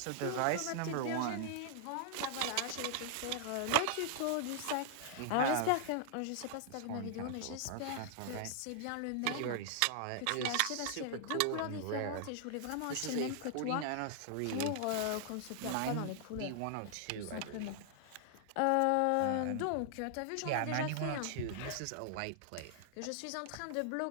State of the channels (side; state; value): both; different; correlation -0.01